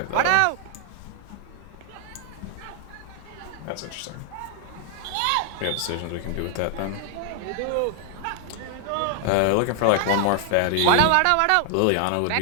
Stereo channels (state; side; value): different; both; correlation 0.00